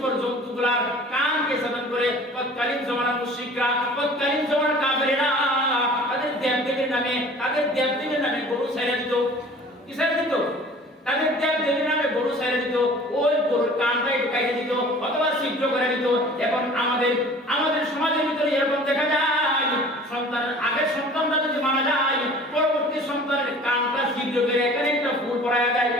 জন্তুগুলার কানকে ছেদন করে তৎকালীন জমানার মুশরিকরা তৎকালীন জমানার কাফেররা তাদের দেবদেবীর নামে গরু ছেড়ে দিত কি ছেড়ে দিত তাদের দেবদেবীর নামে গরু ছেড়ে দিত ওই গরুর কানটাই ঢুকাইয়ে দিত অথবা ছিদ্র করে দিত এখন আমাদের সমাজের ভিতরে এরকম দেখা যায় আগের সন্তানটা যদি মারা যায় পরবর্তী সন্তানের কানটা ছিদ্র করে এখানে একটা ফুল পরায়া যায়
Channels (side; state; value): both; normal; correlation 0.46